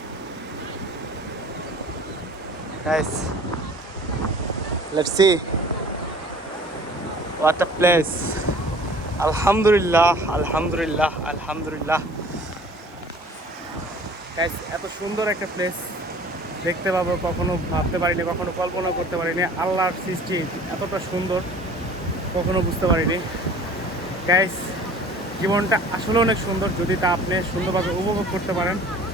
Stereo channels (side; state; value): both; normal; correlation 0.48